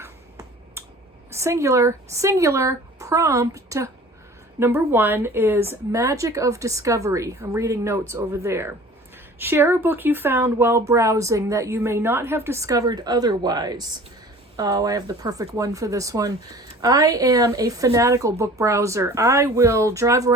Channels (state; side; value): normal; both; correlation 0.45